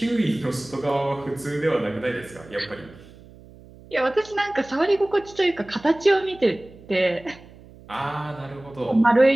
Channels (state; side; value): noise; right; hum, 22 dB below the sound